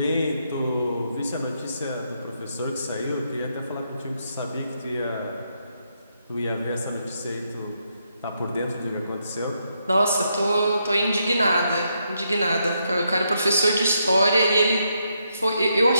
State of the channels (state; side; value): inverted; both; correlation -0.79